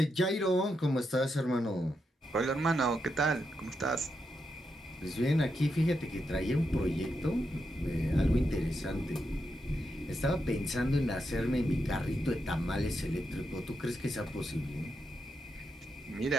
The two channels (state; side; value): normal; both; correlation 0.84